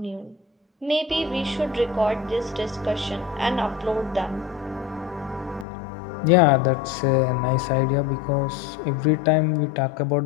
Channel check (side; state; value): right; drops out; at 5.7 s